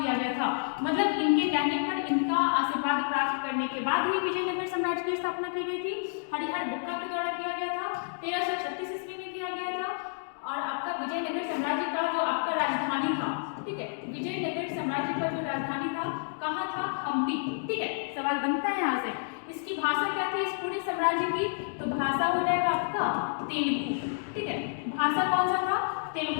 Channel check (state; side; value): silent; right; digital silence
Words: गया था। मतलब इनके कहने पर, इनका आशीर्वाद प्राप्त करने के बाद ही विजयनगर साम्राज्य की स्थापना की गई थी। हरिहर बुक्का के द्वारा किया गया था, 1336 ईस्वी में किया गया था। और आपका विजयनगर साम्राज्य का जो आपका राजधानी था, ठीक है, विजयनगर साम्राज्य का जो राजधानी था कहाँ था? हम्पी, ठीक है। सवाल बनता है यहाँ से, इसकी भाषा क्या थी इस पूरे साम्राज्य की? तो भाषा हो जाएगा आपका तेलुगु, ठीक है, भाषा कौन सा था?